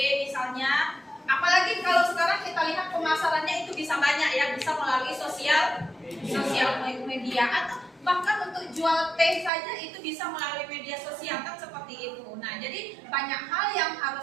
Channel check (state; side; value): drops out; left; at 9.5 s